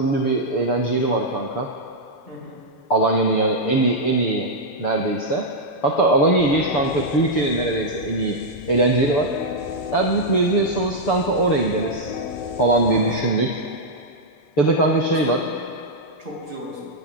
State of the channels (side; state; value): right; late; 6.9 ms